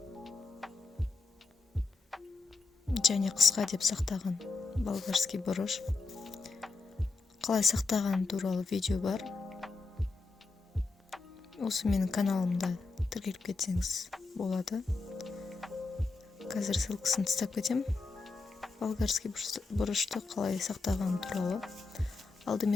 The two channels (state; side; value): quieter; right; 3.8 dB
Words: және қысқа деп сақтаған болгарский бұрыш. Қалай сақтаған туралы видео бар. Осы менің каналымда тіркеліп кетсеңіз болады. Қазір ссылкасын тастап кетем. Болгарский бұрышты қалай сақтаған туралы.